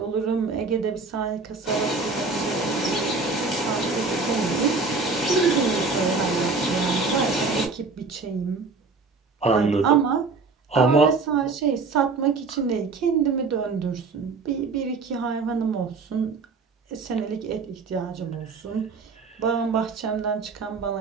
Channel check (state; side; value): quieter; left; 4.2 dB